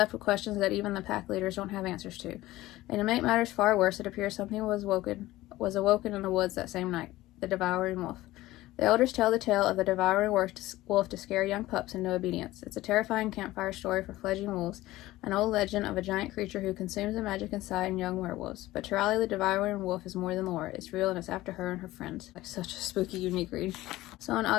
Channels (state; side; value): quieter; right; 17.1 dB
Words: with questions that even the pack leaders don't have answers to. And to make matters far worse, it appears something was awoken in the woods that same night, the Devouring Wolf. The elders tell the tale of the devouring wolf to scare young pups into obedience. It's a terrifying campfire story for fledgling wolves, an old legend of a giant creature who consumes the magic inside young werewolves. But to Riley, the devouring wolf is more than lore. It's real, and it's after her and her friends. Like such a spooky, unique read. So on